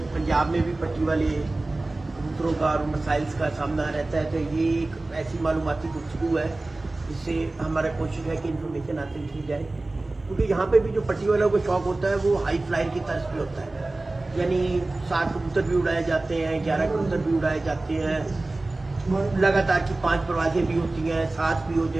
पंजाब में भी पट्टी वाले कबूतरों का और मसाइल्स का सामना रहता है। तो ये एक ऐसी मालूमाती गुफ्तगू है जिससे हमारा कोशिश है कि इन्फॉर्मेशन हासिल की जाए, क्योंकि यहाँ पे भी जो पट्टी वालों को शौक होता है वो हाई फ्लायर की तर्ज पे होता है, यानी 7 कबूतर भी उड़ाए जाते हैं, 11 कबूतर भी उड़ाए जाते हैं, लगातार की 5 परवाजें भी होती हैं, 7 भी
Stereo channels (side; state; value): left; quieter; 3.0 dB